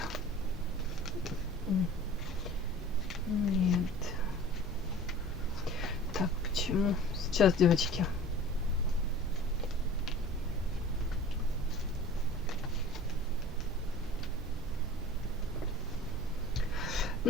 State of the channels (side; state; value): both; normal; correlation 0.42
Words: Нет. Так, почему? Сейчас, девочки.